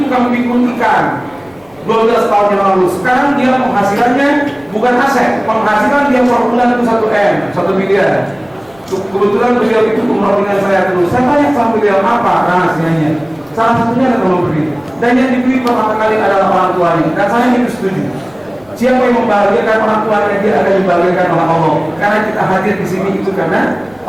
tukang pikul ikan 12 tahun yang lalu. Sekarang dia penghasilannya bukan aset, penghasilan dia per bulan itu 1 M, 1 miliar. Kebetulan beliau itu umroh dengan saya terus. Saya tanya sama beliau apa rahasianya. Salah satunya adalah memberi, dan yang diberi pertama kali adalah orang tuanya. Dan saya itu setuju. Siapa yang membahagiakan orang tuanya, dia akan dibahagiakan oleh Allah. Karena kita hadir di sini itu karena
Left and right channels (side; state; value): left; noise; rumble, 30 dB below the sound